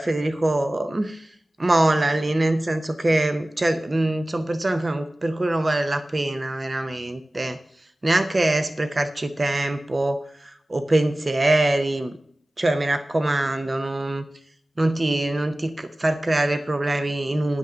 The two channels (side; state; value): both; normal; correlation 0.97